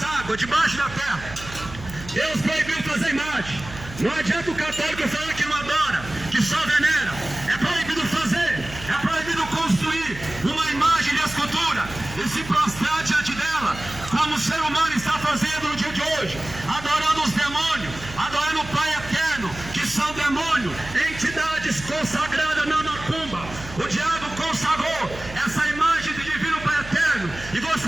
águas, debaixo da terra. Deus proibiu fazer imagem. Não adianta o católico falar que não adora, que só venera. É proibido fazer, é proibido construir uma imagem de escultura e se prostrar diante dela, como o ser humano está fazendo no dia de hoje, adorando os demônios, adorando o Pai Eterno, que são demônios, entidades consagradas na macumba. O diabo consagrou essa imagem de divino Pai Eterno e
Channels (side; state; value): right; noise; hum, 14 dB below the sound